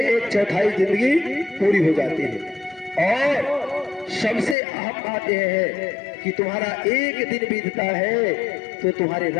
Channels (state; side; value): drops out; right; at 4.5 s